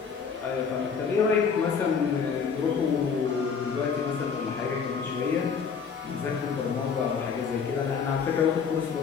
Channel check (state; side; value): quieter; right; 6.1 dB